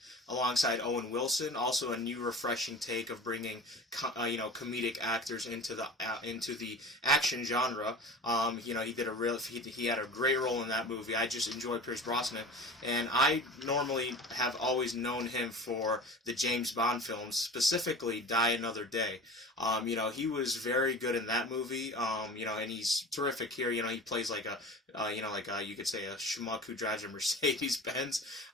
alongside Owen Wilson. Also a new refreshing take of bringing comedic actors into the action genre. He had a great role in that movie. I just enjoy Pierce Brosnan, and I normally have always known him for the James Bond films, specifically Die Another Day. He was very good in that movie. And he's terrific here. He plays you could say a schmuck who drives a Mercedes Benz.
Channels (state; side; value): normal; both; correlation 0.37